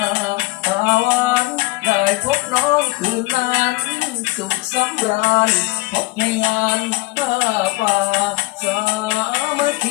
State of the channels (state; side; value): quieter; right; 22.5 dB